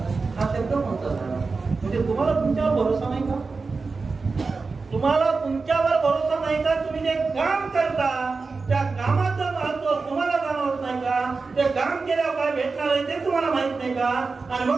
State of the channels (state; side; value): quieter; left; 4.3 dB